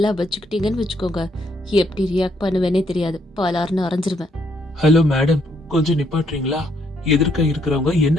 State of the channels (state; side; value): normal; both; correlation 0.72